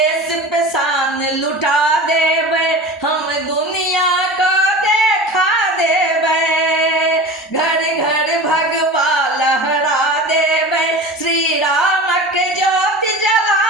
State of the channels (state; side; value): normal; both; correlation 0.34